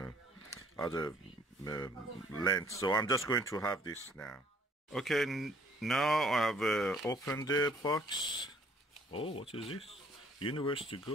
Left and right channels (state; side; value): normal; both; correlation 0.60